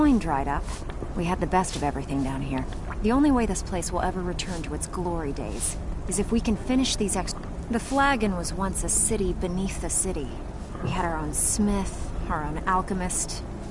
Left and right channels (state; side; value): identical; both; correlation 1.00